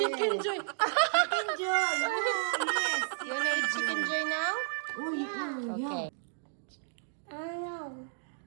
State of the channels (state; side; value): silent; left; digital silence